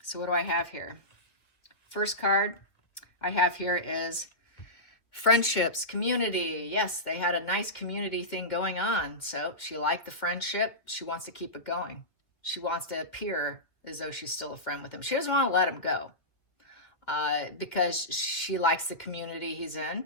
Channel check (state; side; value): late; right; 2.0 ms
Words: so what do I have here? First card I have here is friendships, community. Yes, they had a nice community thing going on. So she liked the friendship. She wants to keep it going. She wants to appear as though she's still a friend with him. She doesn't want to let him go because she likes the community he's in